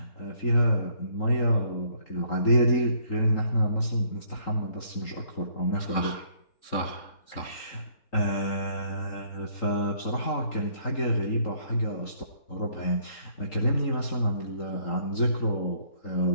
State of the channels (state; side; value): late; right; 3.8 ms